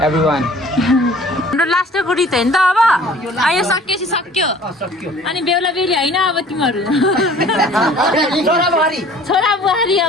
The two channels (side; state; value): both; normal; correlation 0.50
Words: everyone हाम्रो लास्टको रित होइन त अब यो सकिएपछि सक्यो अनि बेहुला बेहुली होइन अब तिमीहरू छोरा बुहारी